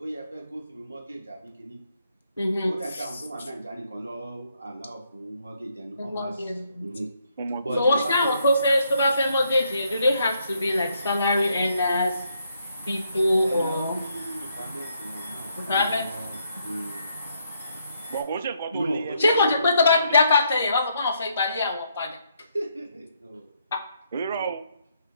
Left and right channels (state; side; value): inverted; both; correlation -0.74